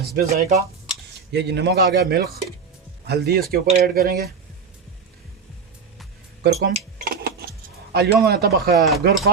ज़ायका। ये जी नमक आ गया, मिल्क, हल्दी इसके ऊपर ऐड करेंगे, करकुम। अल्योम तबख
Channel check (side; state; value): left; quieter; 5.6 dB